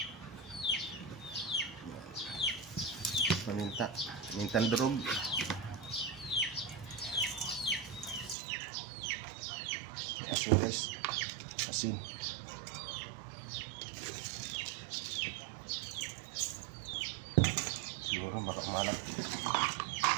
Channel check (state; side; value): drops out; left; at 8.3 s